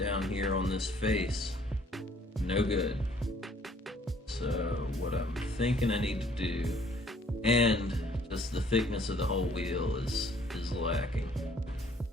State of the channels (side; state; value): both; normal; correlation 0.60